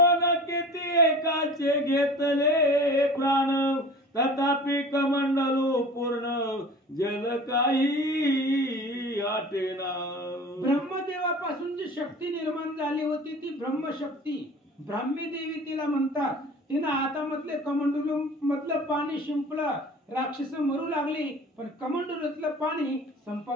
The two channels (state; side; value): normal; both; correlation 0.40